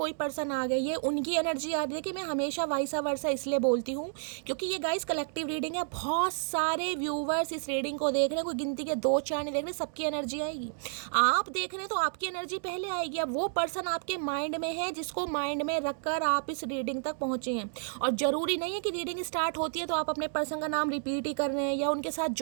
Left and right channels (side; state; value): left; silent; digital silence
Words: पर्सन आ गए, ये उनकी एनर्जी आ रही है कि मैं हमेशा वाइसा वर्सा इसलिए बोलती हूँ क्योंकि ये गाइस कलेक्टिव रीडिंग है, बहुत सारे व्यूवर्स इस रीडिंग को देख रहे हैं, कोई गिनती के 2-4 नहीं देख रहे, सबकी एनर्जी आएगी। आप देख रहे हैं तो आपकी एनर्जी पहले आएगी। अब वो पर्सन आपके माइंड में है जिसको माइंड में रखकर आप इस रीडिंग तक पहुंचे हैं, और जरूरी नहीं है कि रीडिंग स्टार्ट होती है तो आप अपने पर्सन का नाम रिपीट ही कर रहे हैं, या उनके साथ